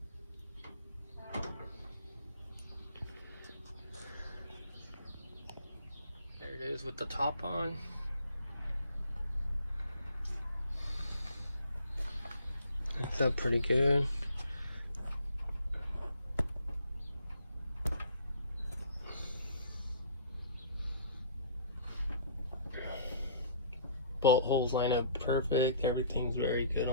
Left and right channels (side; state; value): both; inverted; correlation -0.54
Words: There it is with the top on. It's up pretty good. Bolt holes line up perfect. Everything's very good